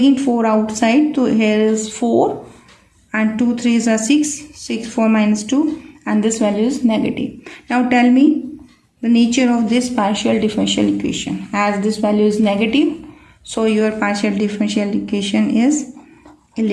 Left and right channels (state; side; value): identical; both; correlation 1.00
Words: 4 outside. So here is 4 and 2 3s are 6. 6 4 minus 2, and this value is negative. Now tell me the nature of this partial differential equation. As this value is negative, so your partial differential equation is